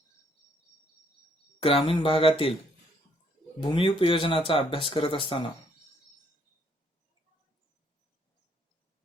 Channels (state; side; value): normal; both; correlation 0.69